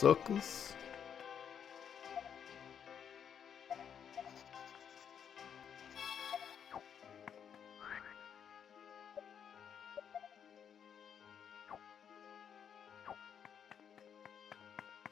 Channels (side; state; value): right; quieter; 8.0 dB